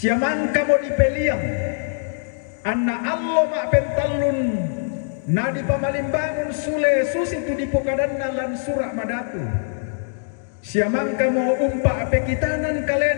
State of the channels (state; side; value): silent; right; digital silence